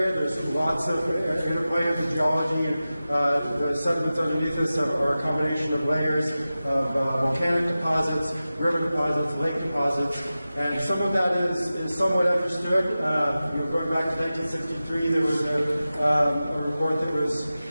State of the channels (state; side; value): inverted; both; correlation -0.95